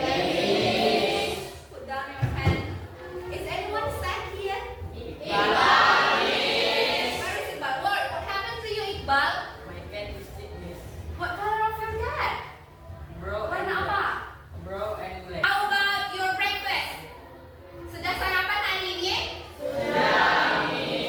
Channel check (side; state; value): both; identical; correlation 1.00